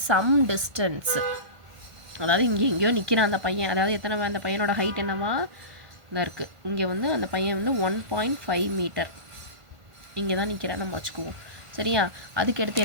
some distance. அதாவது இங்கே எங்கேயோ நிற்கிறான் அந்த பையன். அதாவது எத்தனை அந்த பையனோட ஹைட் என்னவா தான் இருக்குது. இங்கே வந்து அந்த பையன் வந்து 1.5 மீட்டர் இங்கே தான் நிற்கிறான் நம்ம வச்சுக்குவோம். சரியா? அதுக்கு அடுத்து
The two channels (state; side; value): late; left; 1.5 ms